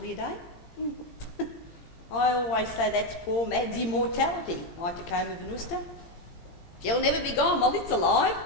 day. I always say that's poor Mad's immortality, my Tacoma Venusta. She'll never be gone while it's alive.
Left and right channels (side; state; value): right; late; 17 ms